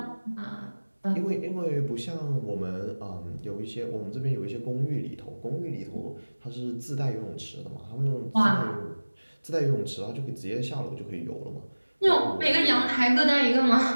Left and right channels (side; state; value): both; inverted; correlation -1.00